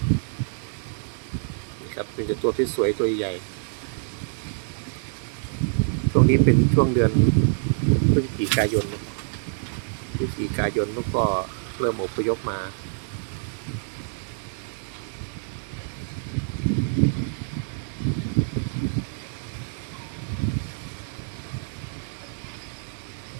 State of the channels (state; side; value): silent; left; digital silence